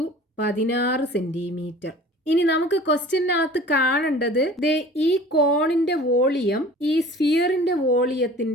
16 സെന്റിമീറ്റർ. ഇനി നമുക്ക് ക്വസ്റ്റ്യനകത്ത് കാണേണ്ടത് ഈ കോണിന്റെ വോളിയം ഈ സ്ഫിയറിന്റെ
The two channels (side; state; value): both; normal; correlation 0.45